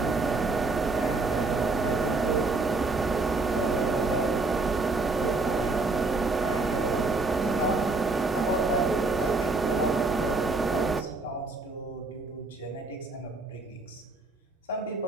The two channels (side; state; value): left; quieter; 3.4 dB